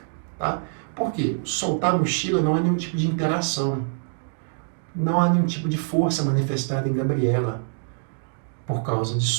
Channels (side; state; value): left; silent; digital silence